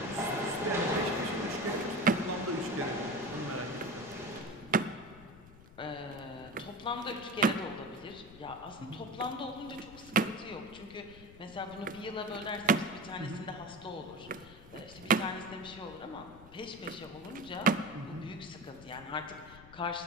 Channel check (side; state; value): left; noise; rumble, 19 dB below the sound